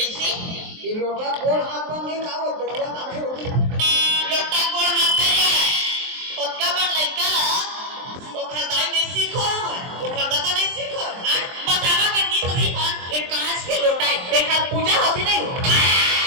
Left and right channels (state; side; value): late; left; 23 ms